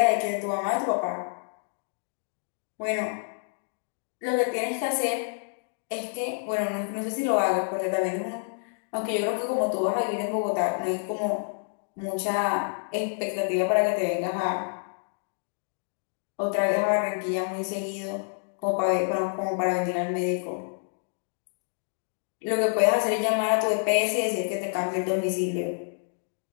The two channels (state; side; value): silent; right; digital silence